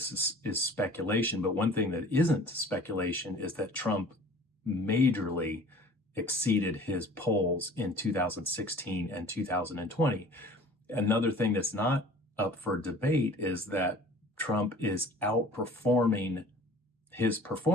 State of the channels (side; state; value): both; normal; correlation 0.47